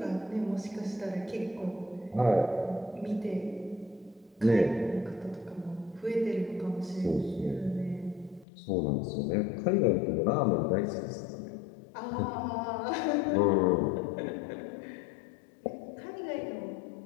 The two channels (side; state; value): right; drops out; at 8.5 s